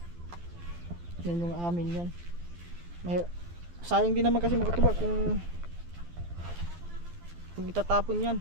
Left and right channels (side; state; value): left; late; 12 ms